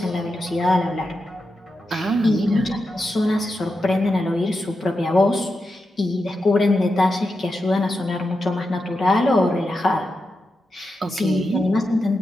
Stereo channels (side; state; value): both; normal; correlation 0.88